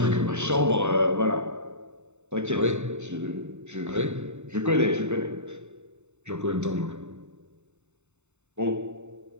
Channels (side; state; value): left; late; 0.82 ms